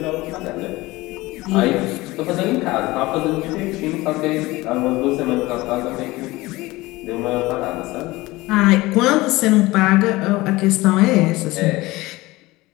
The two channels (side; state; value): right; quieter; 20.1 dB